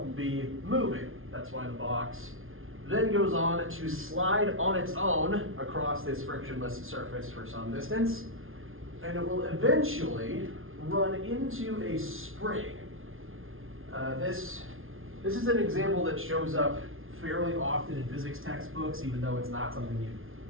be moving. That's why the box then goes on to slide on its own across this frictionless surface for some distance, and it will eventually run into a spring. This is an example that shows up fairly often in physics textbooks, even though it's not something you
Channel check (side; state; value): left; late; 0.60 ms